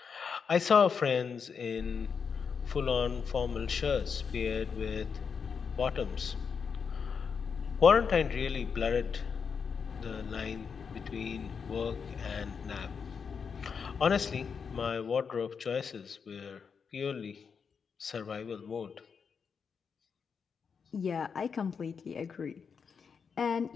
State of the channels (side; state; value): right; quieter; 6.1 dB